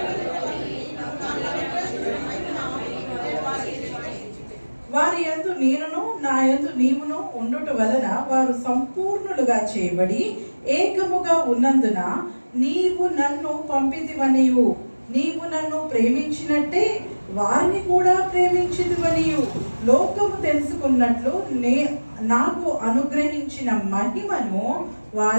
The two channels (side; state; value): both; inverted; correlation -1.00